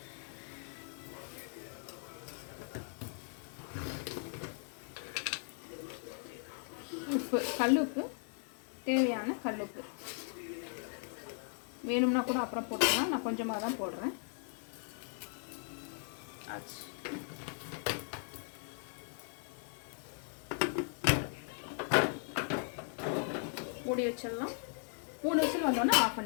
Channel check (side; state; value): right; silent; 53 dB below the other